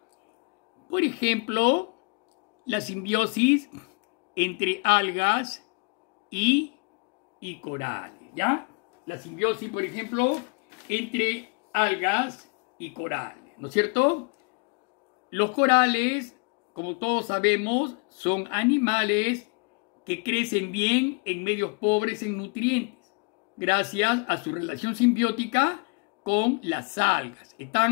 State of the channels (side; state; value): right; quieter; 33.1 dB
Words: Por ejemplo, la simbiosis entre algas y corales, ¿ya? La simbiosis, por ejemplo, entre algas y corales, ¿no es cierto? Los corales, como todos sabemos, son animales que crecen bien en medios pobres en nutrientes, gracias a su relación simbiótica con las algas.